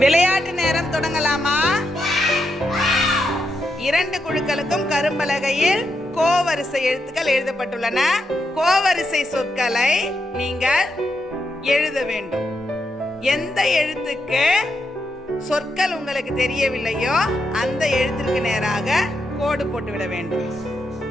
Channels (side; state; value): both; normal; correlation 0.83